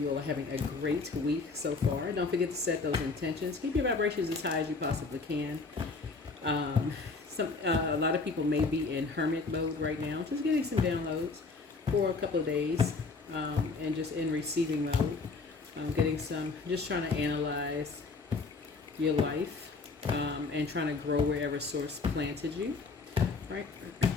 all are having a great week so far. Don't forget to set those intentions. Keep your vibrations as high as you possibly can. A lot of people may be in hermit mode right now, just getting some downloads for a couple of days, and just in receiving mode, getting some, just trying to analyze your life, and trying to grow wherever source planted you, right?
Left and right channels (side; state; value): right; quieter; 4.1 dB